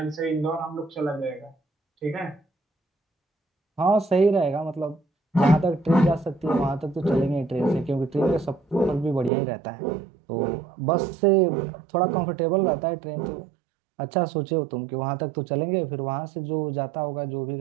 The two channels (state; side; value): drops out; left; at 9.3 s